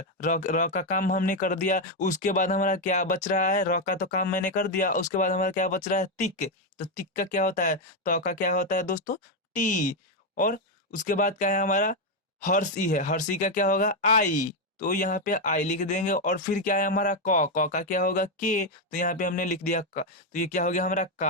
र र का काम हमने कर दिया, उसके बाद हमारा क्या बच रहा है, र का तो काम मैंने कर दिया, उसके बाद हमारा क्या बच रहा है, तिक। तो तिक का क्या होता है, तो का क्या होता है दोस्तों, टी। और उसके बाद क्या है हमारा, हर्षी है, हर्षी का क्या होगा, आई। तो यहाँ पे आई लिख देंगे, और फिर क्या है हमारा क का क्या होगा, के। तो यहाँ पे हमने लिख दिया क। तो ये क्या हो गया हमारा,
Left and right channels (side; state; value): both; normal; correlation 0.05